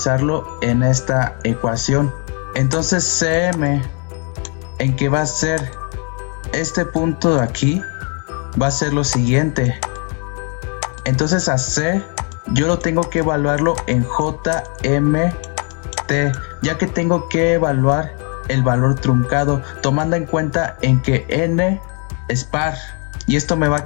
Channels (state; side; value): quieter; right; 37.8 dB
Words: en esta ecuación. Entonces CM, en que va a ser este punto de aquí, va a ser lo siguiente. Entonces a C yo lo tengo que evaluarlo en JMT, ya que tengo que evaluar el valor truncado, tomando en cuenta en que n es par. Y esto me va a